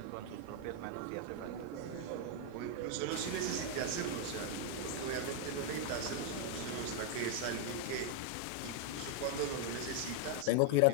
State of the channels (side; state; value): both; different; correlation 0.00